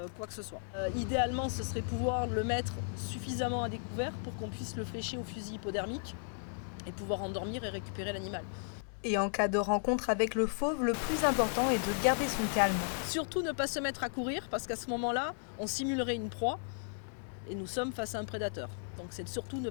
quoi que ce soit. Idéalement, ce serait pouvoir le mettre suffisamment à découvert pour qu'on puisse le flécher au fusil hypodermique et pouvoir endormir et récupérer l'animal. Et en cas de rencontre avec le fauve, le plus important est de garder son calme. Surtout ne pas se mettre à courir parce qu'à ce moment-là, on simulerait une proie et nous sommes face à un prédateur. Donc c'est surtout ne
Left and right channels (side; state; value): right; silent; digital silence